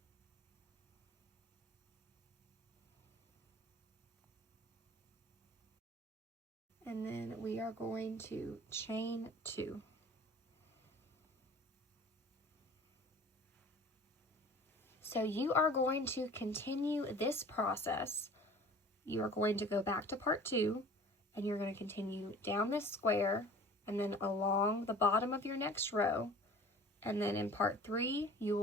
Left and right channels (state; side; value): normal; both; correlation 0.45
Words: And then we are going to chain 2. So you are going to continue this process. You are going to go back to part 2, and you're going to continue down this square and then along the bottom of your next row. And then in part 3, you